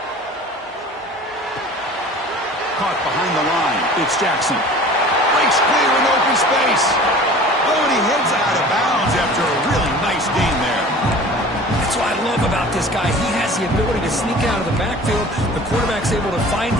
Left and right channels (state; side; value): normal; both; correlation 0.43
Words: Caught behind the line. It's Jackson. Breaks clear in open space. Oh, and he heads out of bounds after a really nice gain there. That's what I love about this guy. He has the ability to sneak out of the backfield. The quarterback's able to find